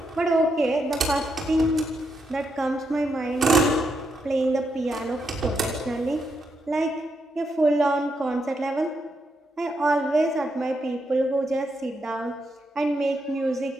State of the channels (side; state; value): both; normal; correlation 0.81